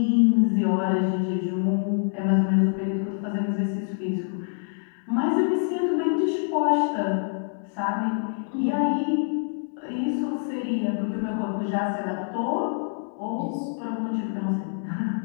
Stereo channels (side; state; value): right; silent; digital silence